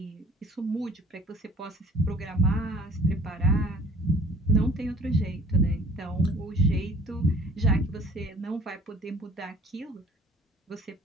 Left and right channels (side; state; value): both; normal; correlation 0.50